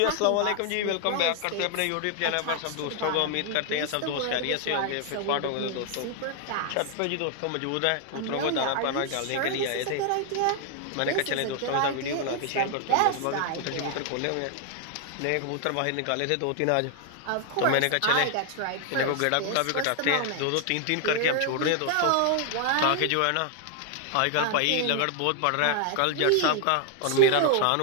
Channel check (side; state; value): both; different; correlation 0.00